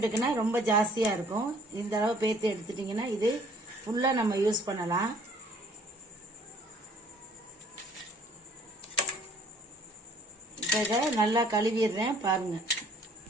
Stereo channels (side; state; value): both; normal; correlation 0.57